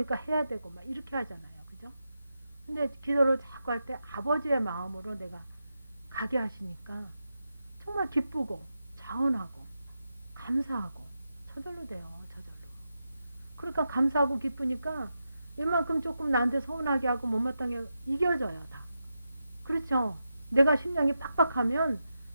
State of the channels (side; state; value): both; inverted; correlation -0.88